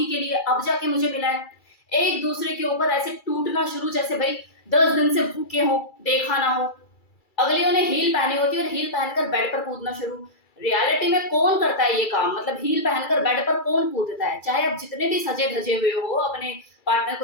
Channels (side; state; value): right; late; 2.3 ms